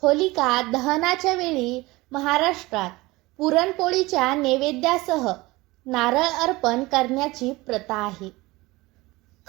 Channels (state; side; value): quieter; left; 21.1 dB